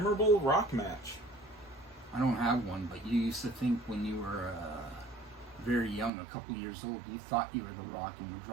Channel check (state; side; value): drops out; left; at 6.1 s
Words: Rock match. I don't have one, but you used to think when you were very young, a couple years old, you thought you were the Rock and would